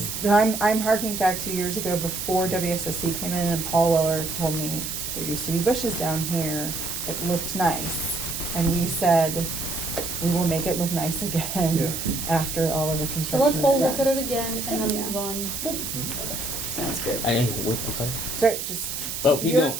I'm harking back 2 years ago before WSSC came in and Paul Weller told me there used to be bushes down here that looked nice. And we said, we will make it look nice again after all of the So construction let's is all done. look at it again and then Yeah. move on. Sounds good. I'm sorry. Sorry, just, Oh, keep you're going.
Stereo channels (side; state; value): right; noise; hiss, 5 dB below the sound